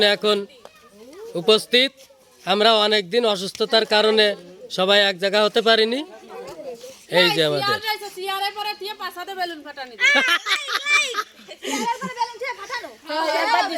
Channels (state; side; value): identical; both; correlation 1.00